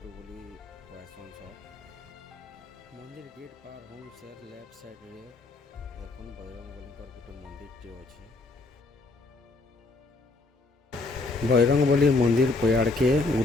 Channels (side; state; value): right; quieter; 3.3 dB